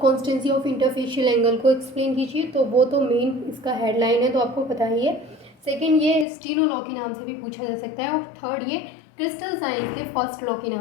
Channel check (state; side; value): drops out; right; at 6.2 s